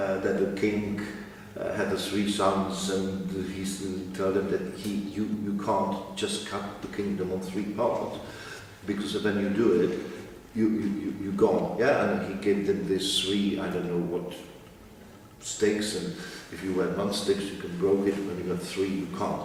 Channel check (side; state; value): both; identical; correlation 1.00